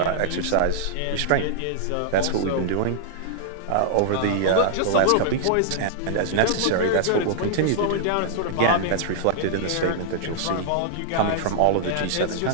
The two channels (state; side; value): different; both; correlation -0.01